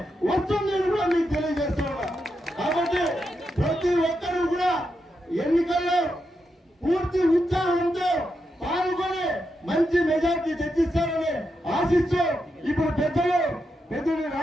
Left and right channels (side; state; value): both; normal; correlation 0.85